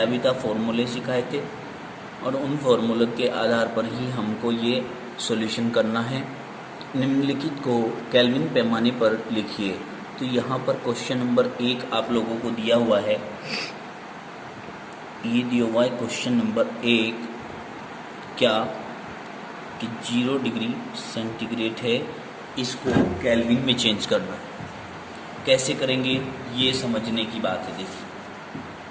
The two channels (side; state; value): both; identical; correlation 1.00